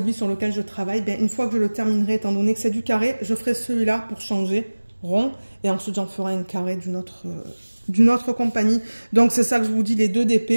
sur lequel je travaille. Ben, une fois que je le terminerai, étant donné que c'est du carré, je ferai celui-là pour changer rond. Et ensuite, j'en ferai un carré d'une autre compagnie. Donc, c'est ça que je vous dis, les deux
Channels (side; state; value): both; inverted; correlation -1.00